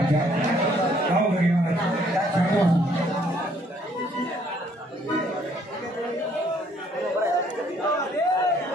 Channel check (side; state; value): both; normal; correlation 0.64